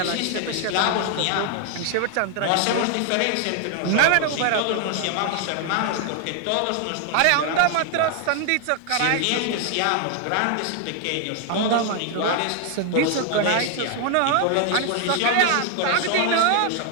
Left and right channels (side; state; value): both; different; correlation 0.00